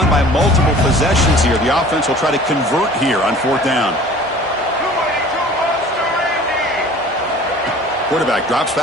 by multiple possessions here. The offense will try to convert here on 4th down. Quarterback drops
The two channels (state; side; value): normal; both; correlation 0.46